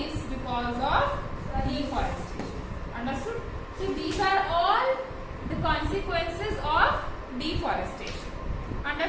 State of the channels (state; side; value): identical; both; correlation 1.00